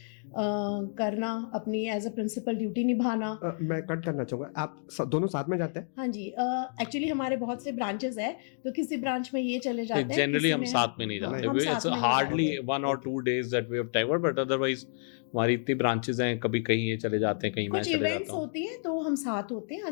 करना, अपनी एज अ प्रिंसिपल ड्यूटी निभाना. मैं कट करना चाहूँगा, आप दोनों साथ में जाते हैं? हाँ जी, एक्चुअली हमारे बहुत से ब्रांचेस है, तो किसी ब्रांच में ये चले जाते हैं, जनरली हम साथ में नहीं जाते. हम साथ में hardly 1 or 2 days that we have time, but otherwise हमारी इतनी ब्रांचेस हैं, कभी कहीं ये चले जाते हैं, कहीं कुछ इवेंट्स होती है तो हम साथ होते हैं,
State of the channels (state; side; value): silent; right; digital silence